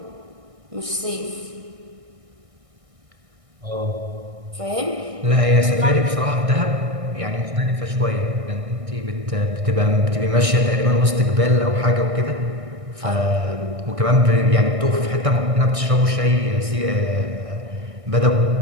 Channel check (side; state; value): left; late; 1.6 ms